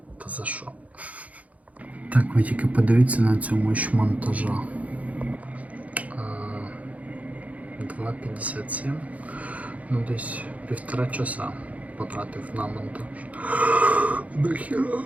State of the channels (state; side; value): late; left; 0.069 ms